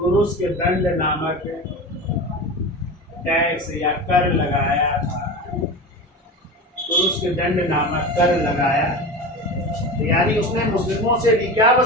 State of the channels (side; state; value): both; normal; correlation 0.28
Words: दंड नामक टैक्स या कर लगाया था। तुरुस्क दंड नामक कर लगाया, यानी उसने मुस्लिमों से भी क्या